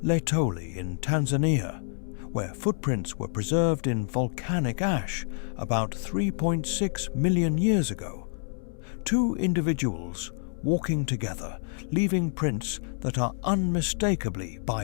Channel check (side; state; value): right; silent; 59 dB below the other